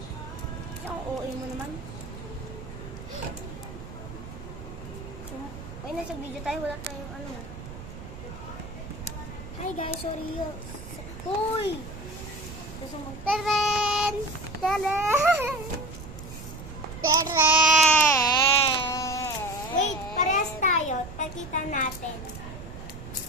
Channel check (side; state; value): right; noise; rumble, 12 dB below the sound